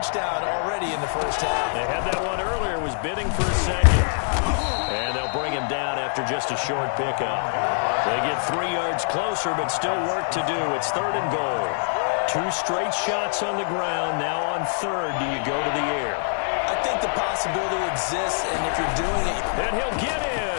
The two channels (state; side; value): silent; right; digital silence